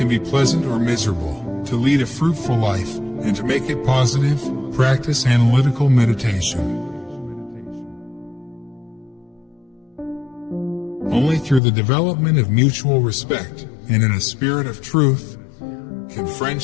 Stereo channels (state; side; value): drops out; right; at 11.6 s